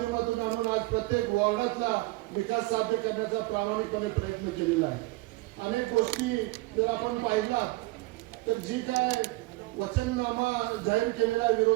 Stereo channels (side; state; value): left; quieter; 21.9 dB